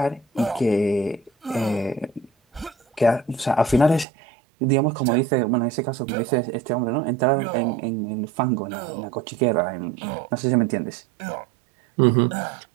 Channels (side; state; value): left; drops out; at 4.0 s